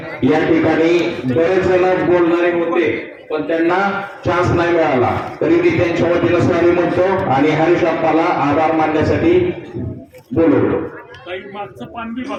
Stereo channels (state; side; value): identical; both; correlation 1.00